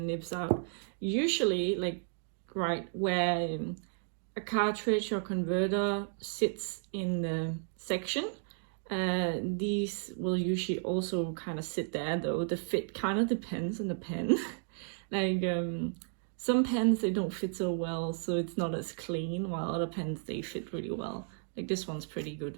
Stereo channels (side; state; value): left; silent; digital silence